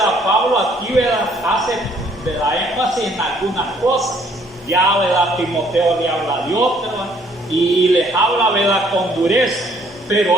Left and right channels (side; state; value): both; normal; correlation 0.63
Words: Pablo aquí, ¿verdad?, hace, ¿verdad?, énfasis en algunas cosas. Ya, ¿verdad?, Timoteo le habla de otras y les habla, ¿verdad?, con dureza,